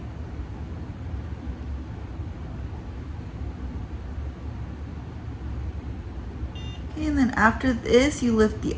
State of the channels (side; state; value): both; identical; correlation 1.00